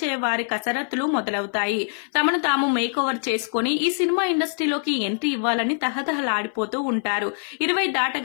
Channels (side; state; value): right; silent; 58 dB below the other